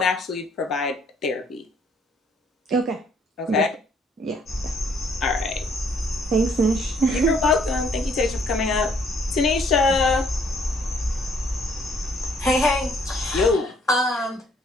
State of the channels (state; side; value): normal; both; correlation 0.65